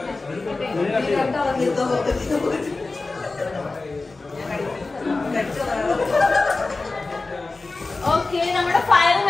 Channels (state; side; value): quieter; right; 3.5 dB